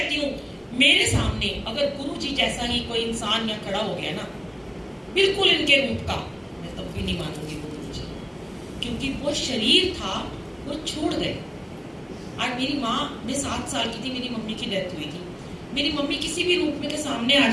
हूँ, मेरे सामने अगर गुरु जी जैसा ही कोई इंसान यहाँ खड़ा हो गया ना, बिल्कुल इनके रूप का, मैं तब भी नहीं मानूंगी वो गुरु जी, क्योंकि वो शरीर था वो छोड़ गए। आज मेरी माँ, मैं 7 साल की थी, मेरी मम्मी की डेथ हुई थी। मेरी मम्मी किसी भी रूप में के सामने आ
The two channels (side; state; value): both; identical; correlation 1.00